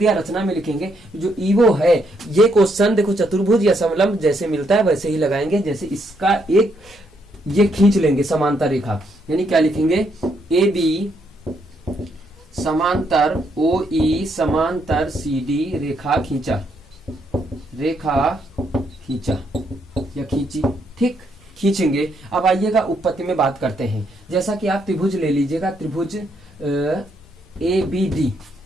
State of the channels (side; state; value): both; normal; correlation 0.75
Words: रचना में लिखेंगे। जो ईवो है, ये क्वेश्चन देखो चतुर्भुज या समलंब जैसे मिलता है वैसे ही लगाएंगे। जैसे इसका एक ये खींच लेंगे समांतर रेखा, यानी क्या लिखेंगे, ए बी समांतर ओ ई समांतर सी डी रेखा खींचा, रेखा खींचा या खींची, ठीक, खींचेंगे। अब आइएगा उत्पत्ति में बात करते हैं। जैसा कि आप त्रिभुज ले लीजिएगा, त्रिभुज ए बी डी,